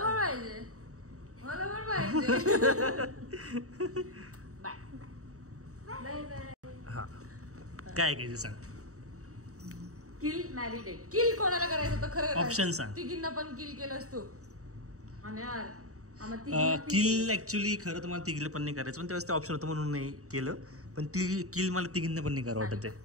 पाहिजे, मला पण पाहिजे. हा काय ऐकायचं सांग. किल मॅरी डेट. किल कोणाला करायचं होतं खरं? ऑप्शन सांग. तिघींना पण किल केलंस तू? आणि यार किल ऍक्च्युली खरं तर मला तिघीला पण नाही करायचं, पण त्यावेळेस ते ऑप्शन होतं म्हणून नाही केलं. पण ती किल मला तिघींना पण नाही करा वाटत आहे.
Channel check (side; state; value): left; late; 0.65 ms